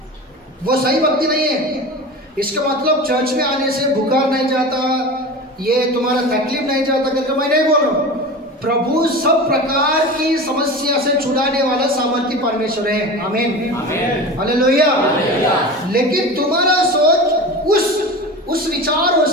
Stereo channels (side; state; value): both; normal; correlation 0.31